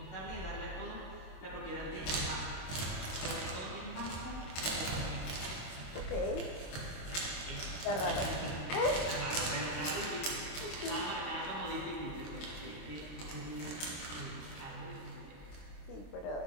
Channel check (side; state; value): right; late; 26 ms